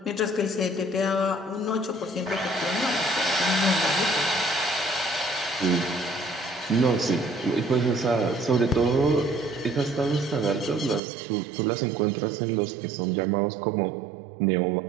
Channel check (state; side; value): drops out; left; at 11.0 s